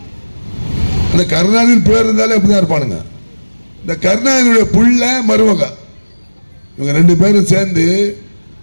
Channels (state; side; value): inverted; both; correlation -1.00